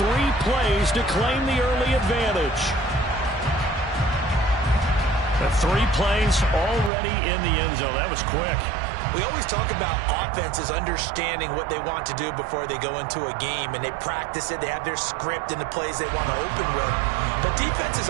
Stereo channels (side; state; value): left; drops out; at 6.9 s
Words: plays to claim the early advantage. The 3 plays already in the end zone. That was quick. We always talk about offenses understanding what they want to do before they go into a game, and they practice it. They have their script and the plays they want to open with. But